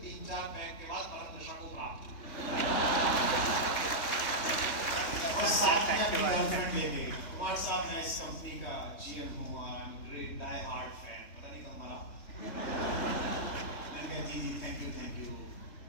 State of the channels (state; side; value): late; right; 3.2 ms